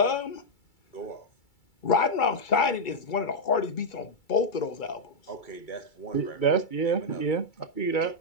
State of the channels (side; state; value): right; late; 2.3 ms